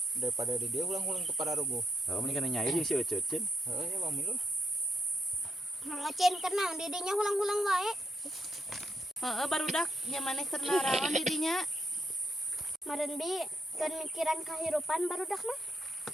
daripada di dia ulang-ulang teu pararugo. Heeh, mending kana nyair jeung si Ece Cin. Heeh, ya Bang Milu. Ngocen kenang didinya hulang-hulang wae. Barudak nya maneh keur naraon di dinya. Maren bi kan mikiran kahirupan barudak mah.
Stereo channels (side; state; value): both; normal; correlation 0.78